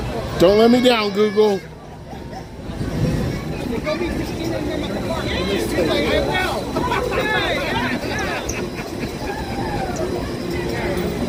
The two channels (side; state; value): both; identical; correlation 1.00